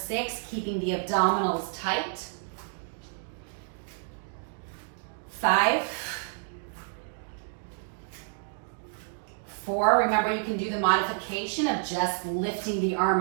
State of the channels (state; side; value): silent; left; 58 dB below the other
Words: keeping the abdominals tight. 5, 4, remember you can do the modification of just lifting the